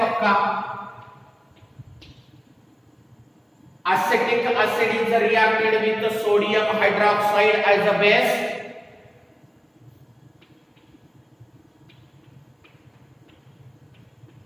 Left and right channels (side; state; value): both; identical; correlation 1.00